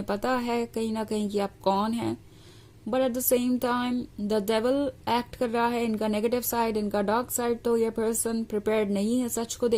पता है कहीं ना कहीं कि आप कौन हैं। But at the same time the devil act कर रहा है, इनका नेगेटिव साइड, इनका डार्क साइड। तो ये पर्सन प्रिपेयर्ड नहीं है सच को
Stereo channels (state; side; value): identical; both; correlation 1.00